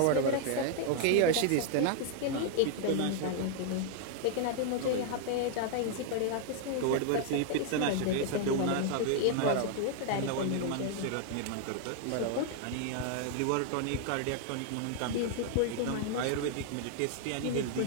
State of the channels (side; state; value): both; different; correlation 0.00